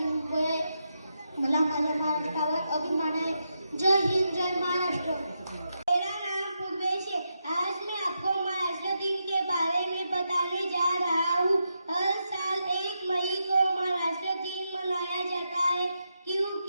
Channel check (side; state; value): both; inverted; correlation -0.85